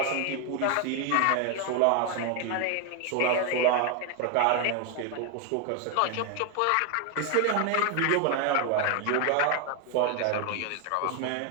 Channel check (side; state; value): both; different; correlation 0.01